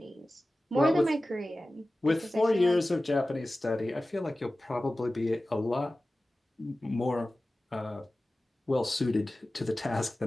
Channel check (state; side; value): normal; both; correlation 0.96